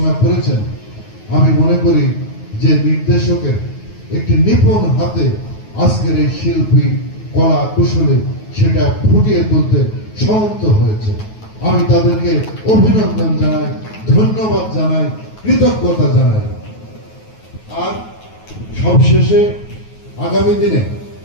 করেছেন, আমি মনে করি যে নির্দেশকের একটি নিপুণ হাতে আজকের এই শিল্পী কলা কুশলে সেটা ফুটিয়ে তুলতে সমর্থ হয়েছে। আমি তাদেরকে অভিনন্দন জানাই, ধন্যবাদ জানাই, কৃতজ্ঞতা জানাই। আর সবশেষে আগামী দিনে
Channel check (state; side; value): late; right; 9.3 ms